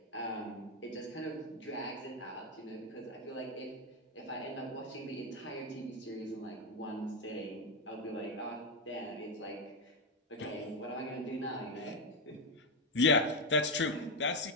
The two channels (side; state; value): both; normal; correlation 0.08